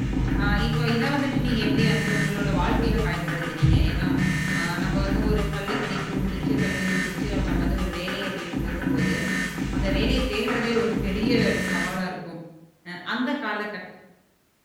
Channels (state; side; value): identical; both; correlation 1.00